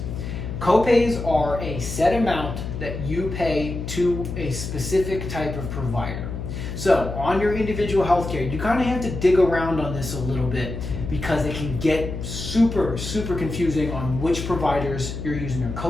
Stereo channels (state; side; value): noise; left; hum, 6 dB below the sound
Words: Copays are a set amount that you pay to a specific type of provider. So on your individual healthcare, you kind of have to dig around on this a little bit because it can get super confusing on which providers you're using a